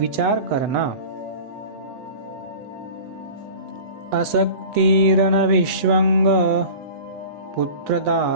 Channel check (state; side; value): late; left; 8.1 ms